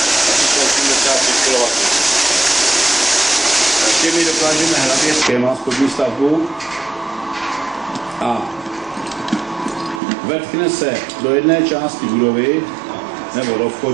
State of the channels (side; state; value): left; drops out; at 10.0 s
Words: Asi jsou 85 kW. Těmi dokážeme hlavě schéma spodní stavbu a vetkne se do jedné části budovy nebo do